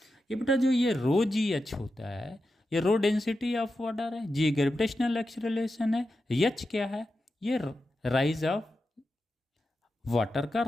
ये बेटा जो ये रो जी एच होता है, ये रो डेंसिटी ऑफ वाटर है, जी ग्रेविटेशनल एक्सेलरेशन है, एच क्या है, ये राइज ऑफ वाटर का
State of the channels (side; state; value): both; normal; correlation 0.90